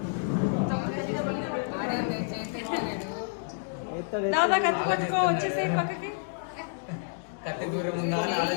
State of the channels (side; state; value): right; silent; digital silence